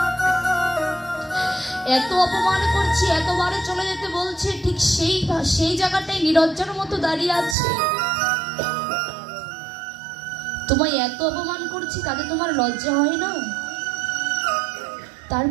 এত অপমান করছি, এতবারে চলে যেতে বলছে, ঠিক সেই জায়গাটাই নিরজ্জার মতো দাঁড়িয়ে আছে। তোমায় এত অপমান করছি তাতে তোমার লজ্জা হয় না?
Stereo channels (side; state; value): left; drops out; at 7.6 s